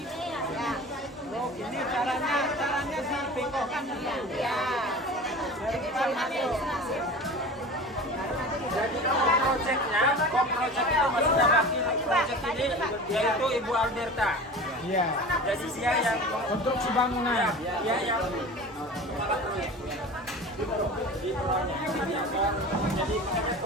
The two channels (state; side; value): normal; both; correlation 0.36